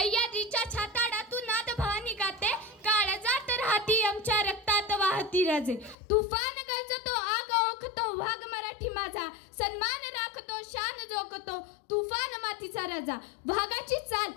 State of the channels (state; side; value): drops out; right; at 6.0 s